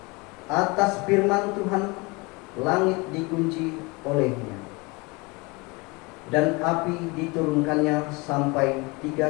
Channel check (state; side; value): quieter; right; 26.5 dB